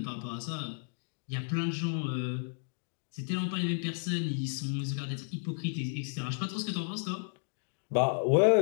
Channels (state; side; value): silent; right; digital silence